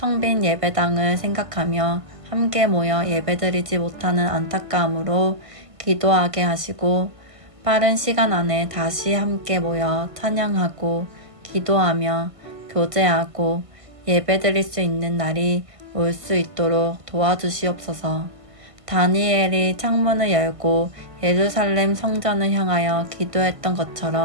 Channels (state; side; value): late; left; 1.5 ms